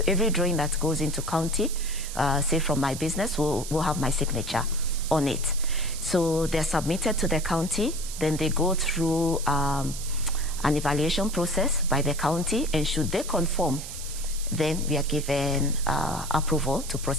every drawing that goes into county, say from my business, will have my signature on it. So they're submitted to the county, then they go through an evaluation process by the county, and should they conform, then we are given approval to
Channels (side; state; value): right; noise; hiss, 10 dB below the sound